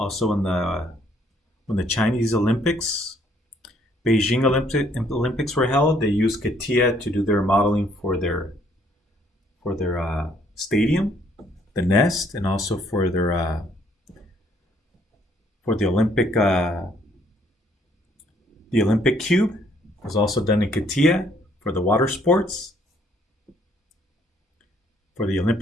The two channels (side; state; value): both; normal; correlation 0.66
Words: when the Chinese Olympics, Beijing Olympics were held, they used CATIA to do their modeling for their stadium, the nest, and also for their for the Olympic cube. It was also done in CATIA for the water sports, for the